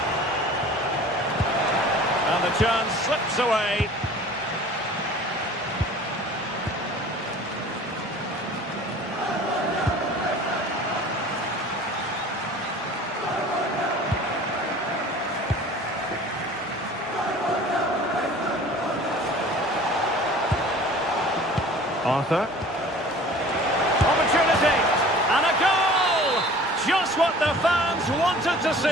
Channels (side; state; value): both; normal; correlation 0.45